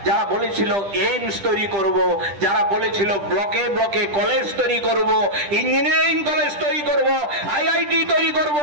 যারা বলেছিল এইমস তৈরি করব, যারা বলেছিল ব্লকে ব্লকে কলেজ তৈরি করব, ইঞ্জিনিয়ারিং কলেজ তৈরি করব, আইআইটি তৈরি করব।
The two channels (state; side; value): late; left; 10 ms